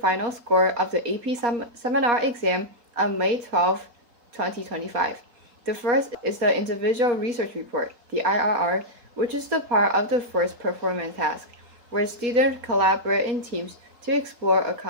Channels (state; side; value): late; left; 4.2 ms